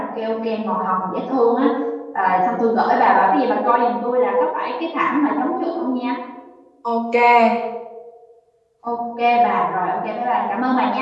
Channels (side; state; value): both; identical; correlation 1.00